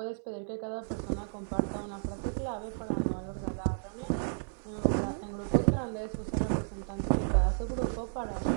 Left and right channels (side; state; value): left; silent; 56 dB below the other